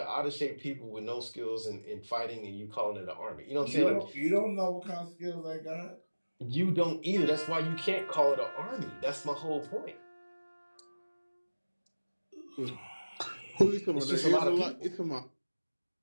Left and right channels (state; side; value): inverted; both; correlation -1.00